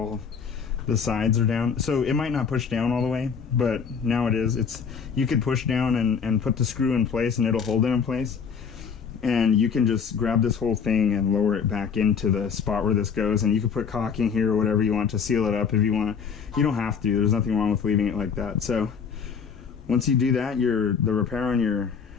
the sides are down. So it might not push down all the way, but now it is. You could push down and put the screw in place, and it'll hold it in place. And you can just grab this whole thing and lower it back into the spot where this goes, and you can put caulking here or whatever you want to seal it up if you want. You don't have to. There's nothing wrong with leaving it like that. So Once you do that, the repair on your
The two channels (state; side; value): quieter; right; 6.3 dB